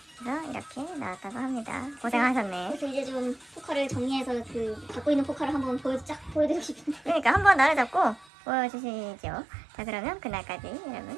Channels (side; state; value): left; drops out; at 8.2 s